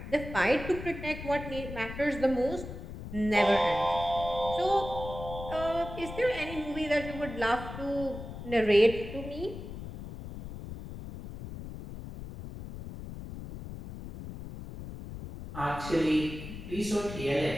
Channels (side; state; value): left; noise; rumble, 10 dB below the sound